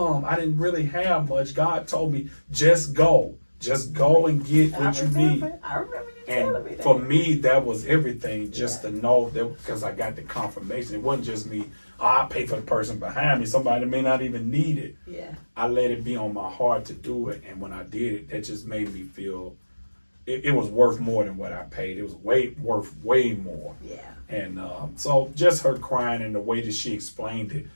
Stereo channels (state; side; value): inverted; both; correlation -1.00